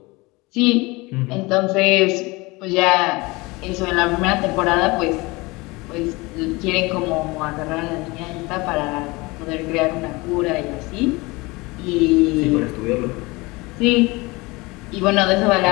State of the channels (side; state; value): right; quieter; 23.7 dB